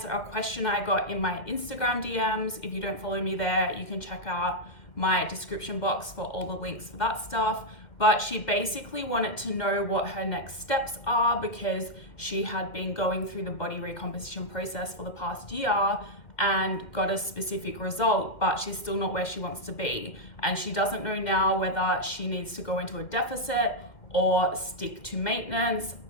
a question I got in my Instagram DMs. If you don't follow me there, you can check out my description box for all the links for that stuff. But she basically wanted to know what her next steps are because she had been going through the body recomposition process for the past year and got a specific result, but she's still not where she wants to be. And she doesn't know now whether she needs to go into a deficit or stick to maintenance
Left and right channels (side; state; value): right; late; 2.1 ms